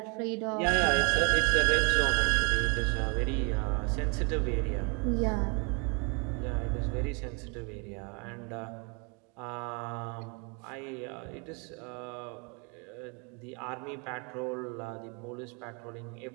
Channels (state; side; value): quieter; left; 33.4 dB